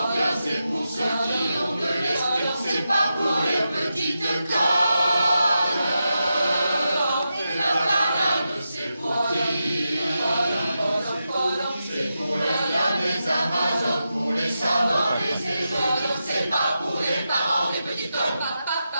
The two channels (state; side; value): inverted; both; correlation -0.88